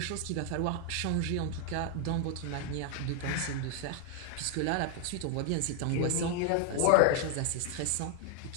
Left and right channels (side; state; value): both; different; correlation 0.00